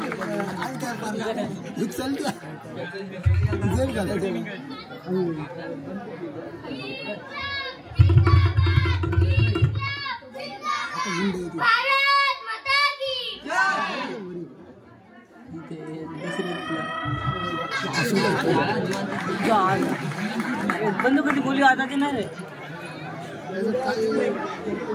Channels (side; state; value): both; identical; correlation 1.00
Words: भारत माता की बंद कधी बोली वाजायची नाही रे.